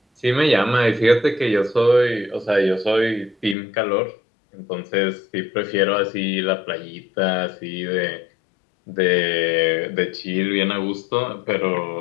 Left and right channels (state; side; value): drops out; right; at 3.6 s